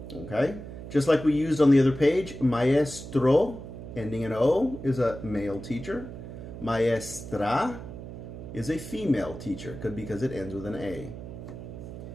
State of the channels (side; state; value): right; noise; hum, 11 dB below the sound